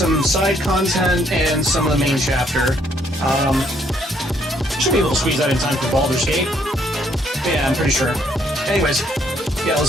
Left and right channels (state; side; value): normal; both; correlation 0.69